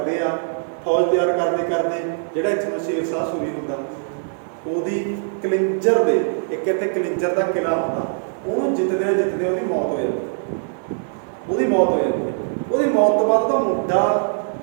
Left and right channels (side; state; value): left; silent; digital silence